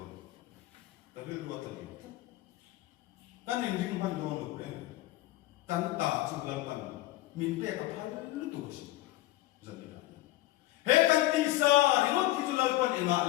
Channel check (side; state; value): right; quieter; 16.8 dB